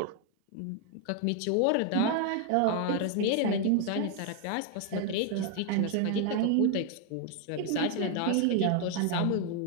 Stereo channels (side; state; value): both; different; correlation 0.00